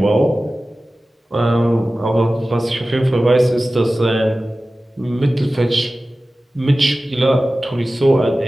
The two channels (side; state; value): both; normal; correlation 0.96